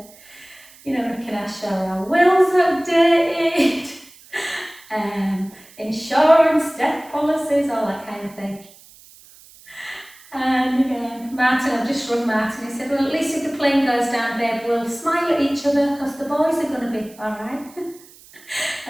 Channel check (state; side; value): noise; right; hiss, 24 dB below the sound